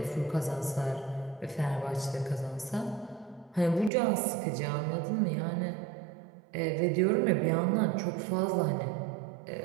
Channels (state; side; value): drops out; left; at 3.9 s